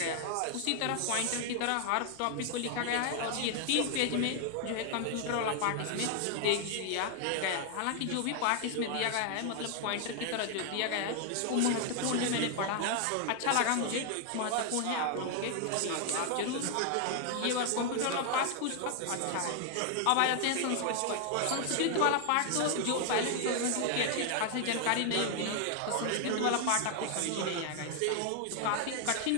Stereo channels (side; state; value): both; different; correlation 0.00